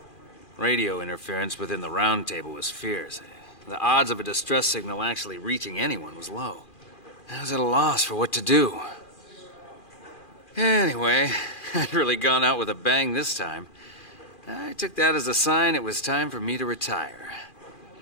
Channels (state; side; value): late; right; 2.4 ms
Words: Radio interference within the round table was fierce. The odds of a distress signal actually reaching anyone was low. I was at a loss for what to do. Anyway, I'd really gone out with a bang this time. I took that as a sign it was time for me to retire.